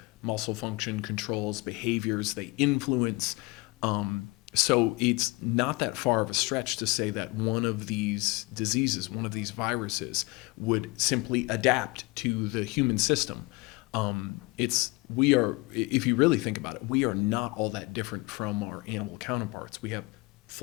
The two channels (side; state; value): right; quieter; 24.6 dB